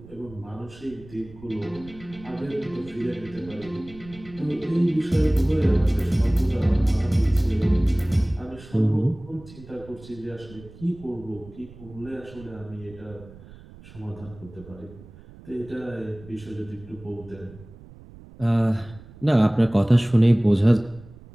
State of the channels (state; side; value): noise; right; rumble, 20 dB below the sound